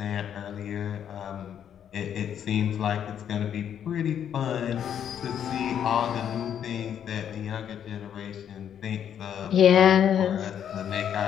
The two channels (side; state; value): right; quieter; 9.1 dB